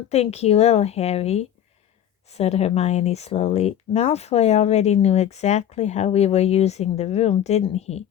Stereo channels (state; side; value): quieter; right; 10.3 dB